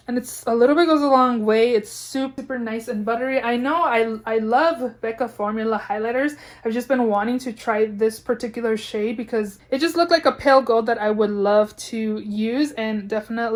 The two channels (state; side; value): identical; both; correlation 1.00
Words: And it's a little bit goes a long way. It's super nice and buttery. I know I love Becca formula highlighters. I've just been wanting to try this particular shade because it just looked like a pale gold that I would love to use, and